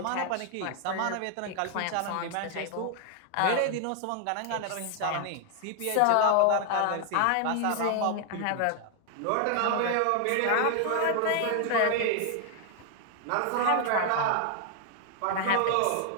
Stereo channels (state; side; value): different; both; correlation 0.00